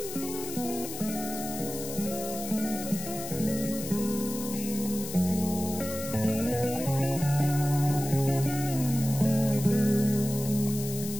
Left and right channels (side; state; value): left; noise; hiss, 9 dB below the sound